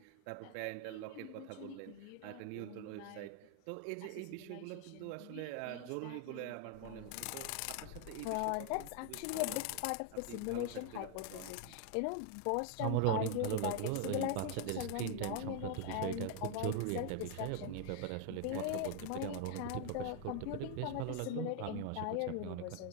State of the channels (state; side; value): different; both; correlation 0.00